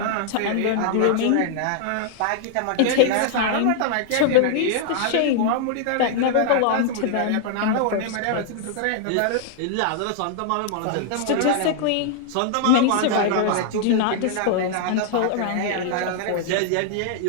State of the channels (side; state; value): both; different; correlation -0.01